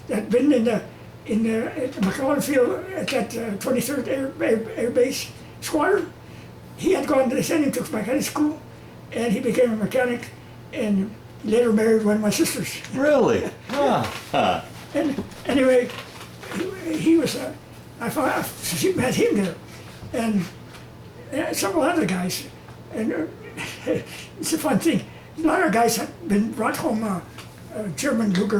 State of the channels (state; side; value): identical; both; correlation 1.00